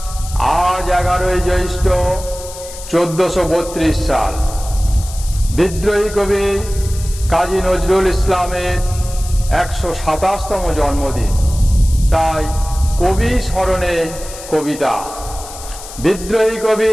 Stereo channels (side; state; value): left; noise; hiss, 14 dB below the sound